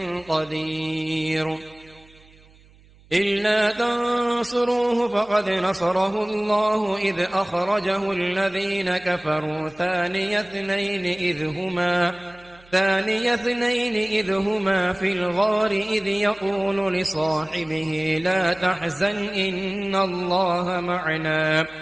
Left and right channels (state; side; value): noise; right; hum, 27 dB below the sound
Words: قدير إلا تنصروه فقد نصره الله إذ أخرجه الذين كفروا ثاني اثنين إذ هما في الغار إذ يقول لصاحبه لا تحزن إن الله معنا